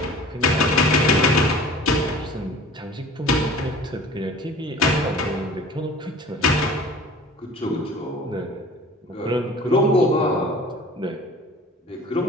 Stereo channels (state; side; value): normal; both; correlation 0.44